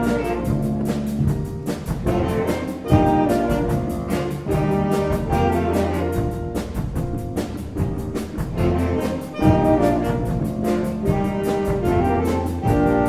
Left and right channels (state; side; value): identical; both; correlation 1.00